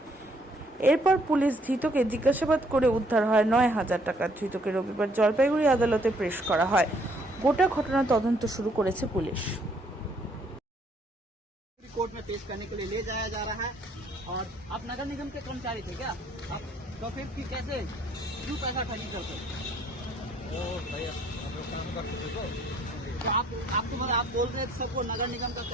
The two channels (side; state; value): both; normal; correlation 0.65